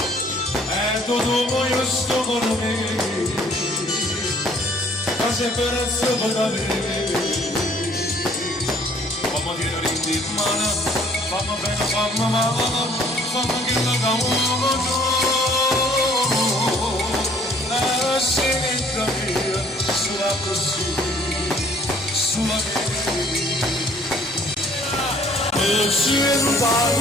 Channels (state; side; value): normal; both; correlation 0.58